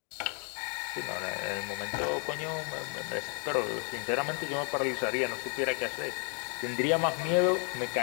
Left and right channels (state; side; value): quieter; right; 38.7 dB